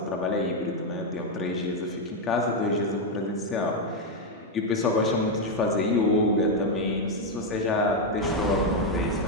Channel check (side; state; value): both; normal; correlation 0.03